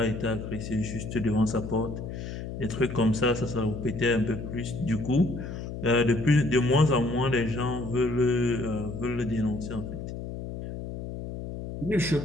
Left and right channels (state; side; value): noise; left; hum, 8 dB below the sound